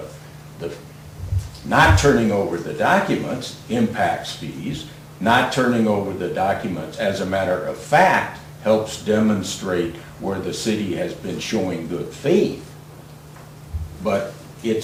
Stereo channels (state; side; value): identical; both; correlation 1.00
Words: not turning over the documents impacts fees. Not turning over the documents, as a matter of fact, helps demonstrate where the city has been showing good faith. But